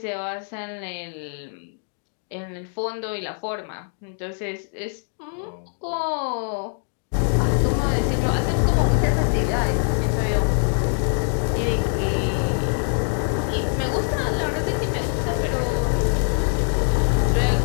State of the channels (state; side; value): silent; right; 56 dB below the other